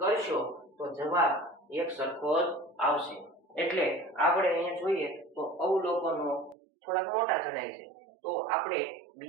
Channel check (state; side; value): drops out; left; at 6.6 s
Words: કરશો તો જવાબ એક સરખો જ આવશે. એટલે આપણે અહીંયા જોઈએ તો અવલોકનો થોડાક મોટા જણાય છે તો આપણે